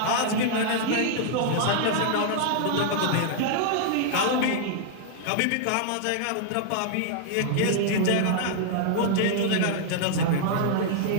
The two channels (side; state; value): both; different; correlation -0.01